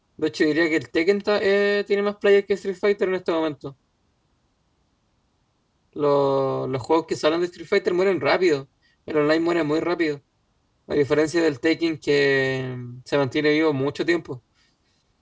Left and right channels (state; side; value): identical; both; correlation 1.00